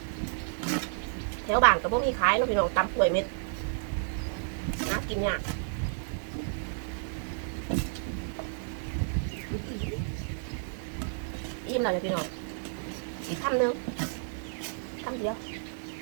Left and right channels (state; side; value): silent; left; digital silence